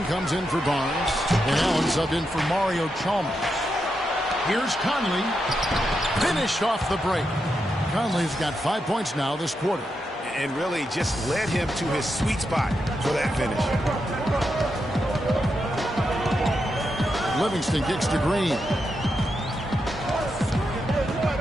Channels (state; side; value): normal; both; correlation 0.85